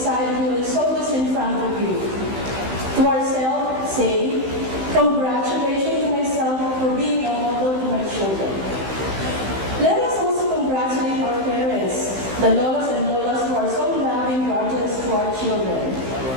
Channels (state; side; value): late; left; 15 ms